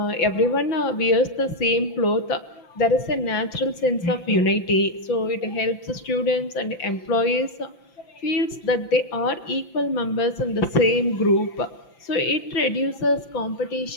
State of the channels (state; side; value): late; right; 5.9 ms